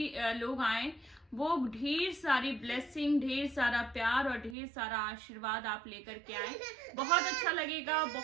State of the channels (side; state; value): left; drops out; at 4.5 s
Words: लोग आए वो ढेर सारी ब्लेसिंग, ढेर सारा प्यार और ढेर सारा आशीर्वाद आप लेकर के आए। बहुत अच्छा लगेगा,